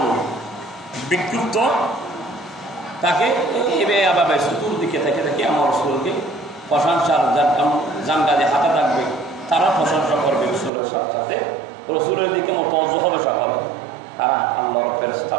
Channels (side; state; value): left; drops out; at 10.7 s